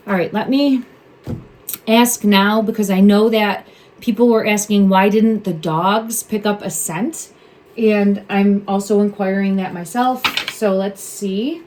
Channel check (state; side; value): identical; both; correlation 1.00